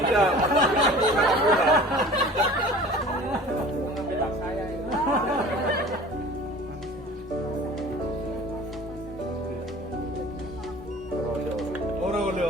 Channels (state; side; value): normal; both; correlation 0.43